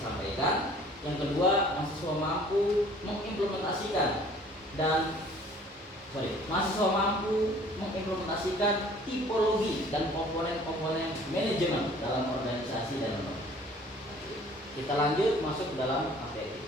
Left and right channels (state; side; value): normal; both; correlation 0.52